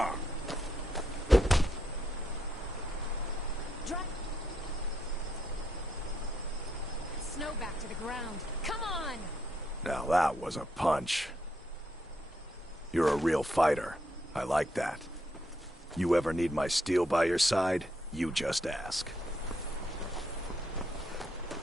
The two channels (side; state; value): both; normal; correlation 0.78